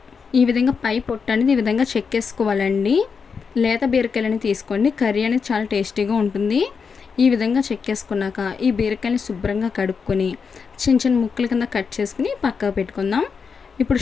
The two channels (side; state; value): right; quieter; 5.7 dB